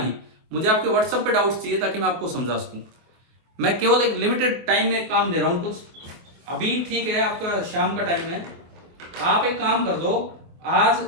मुझे आपके व्हाट्सएप पे डाउट्स चाहिए ताकि मैं आपको समझा सकूं। मैं केवल एक लिमिटेड टाइम में काम दे रहा हूं कुछ, अभी ठीक है आपका शाम का टाइम है, आप एक काम कर दो, आज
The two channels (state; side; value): late; left; 24 ms